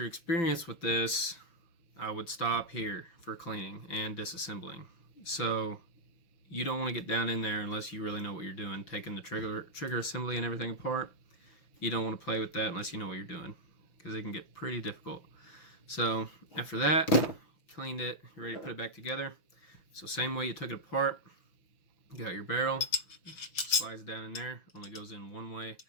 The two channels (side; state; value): right; late; 5.9 ms